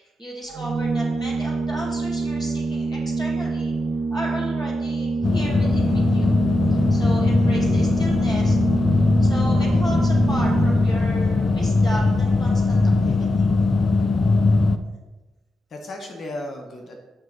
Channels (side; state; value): both; normal; correlation 0.89